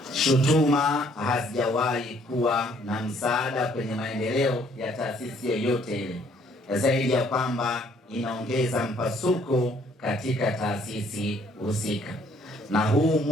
Shutuma hazijawahi kuwa na msaada kwenye maendeleo ya taasisi yoyote ile, zaidi ya kwamba inaongeza mpasuko katika taasisi husika. Na huu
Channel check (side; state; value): both; normal; correlation 0.63